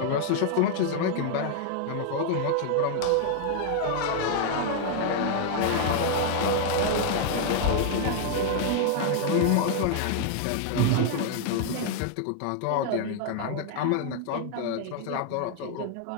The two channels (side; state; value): both; different; correlation 0.00